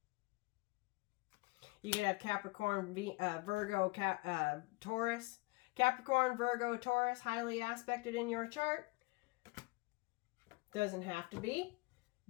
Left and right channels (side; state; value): right; quieter; 25.1 dB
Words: You can have Capricorn, Virgo, Taurus. Capricorn, Virgo, Taurus, highly aspected in your chart. Doesn't have to be,